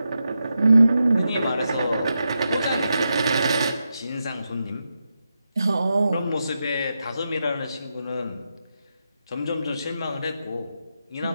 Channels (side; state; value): both; inverted; correlation -0.87